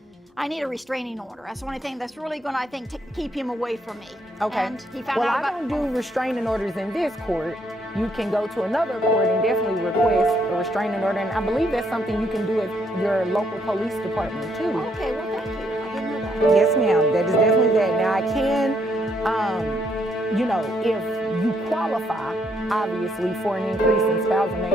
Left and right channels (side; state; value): both; normal; correlation 0.72